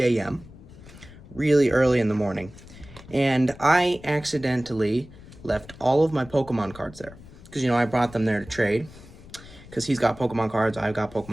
a.m., really early in the morning. And I accidentally left all of my Pokemon cards there. Because, you know, I brought them there to trade. Because he's got Pokemon cards, I've got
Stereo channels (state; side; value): noise; left; rumble, 19 dB below the sound